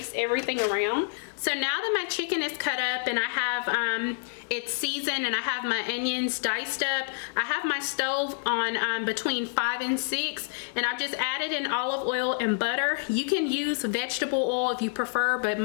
everything around. So now that my chicken is cut up and I have it's seasoned and I have my onions diced up, I have my stove on between 5 and 6, and I've just added in olive oil and butter. You can use vegetable oil if you prefer, but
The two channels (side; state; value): right; silent; digital silence